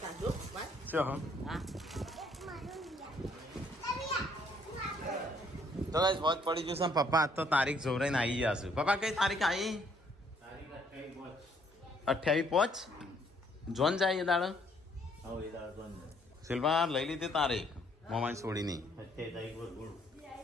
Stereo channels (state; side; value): normal; both; correlation 0.66